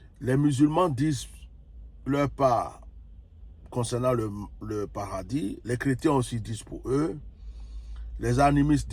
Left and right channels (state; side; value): identical; both; correlation 1.00